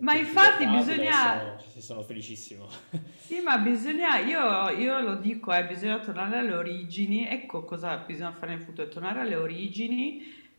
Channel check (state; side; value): inverted; both; correlation -1.00